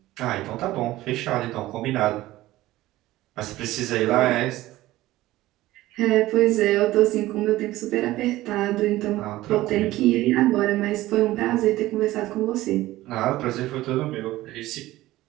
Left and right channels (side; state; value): left; quieter; 16.6 dB